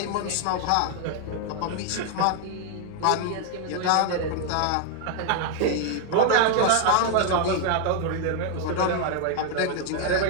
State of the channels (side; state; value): both; different; correlation 0.00